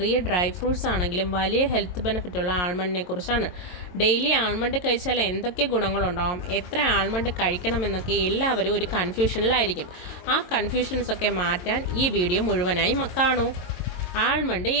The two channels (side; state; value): right; late; 22 ms